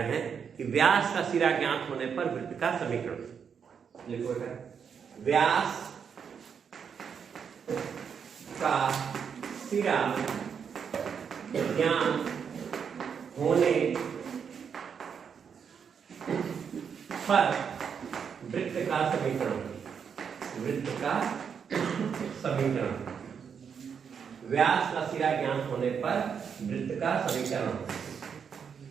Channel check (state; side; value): quieter; left; 6.9 dB